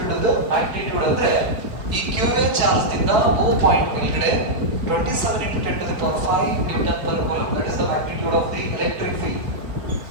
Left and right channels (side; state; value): left; late; 4.2 ms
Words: magnitude ಅಂದ್ರೆ ಈ QA charge ದಿಂದ O ಪಾಯಿಂಟ್ ಮೇಲ್ಗಡೆ 27 into 10 to the power 5 Newton per coulomb. That is the magnitude of the electric field.